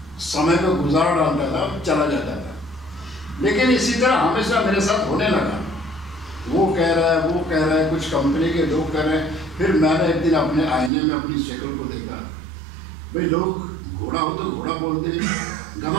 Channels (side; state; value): left; drops out; at 10.9 s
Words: समय को गुजार डालता था, चला जाता था। लेकिन इसी तरह हमेशा मेरे साथ होने लगा। वो कह रहा है, वो कह रहा है, कुछ कंपनी के लोग कह रहे हैं। फिर मैंने एक दिन अपने आईने में अपनी शक्ल को देखा। भाई लोग घोड़ा हो तो घोड़ा बोलते हैं,